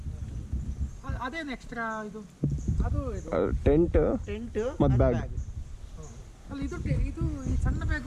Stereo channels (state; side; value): identical; both; correlation 1.00